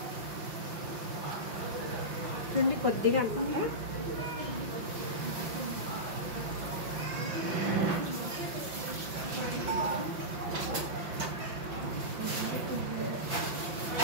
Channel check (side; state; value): left; late; 5.7 ms